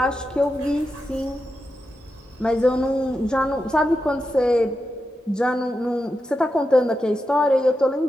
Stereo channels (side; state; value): both; normal; correlation 0.88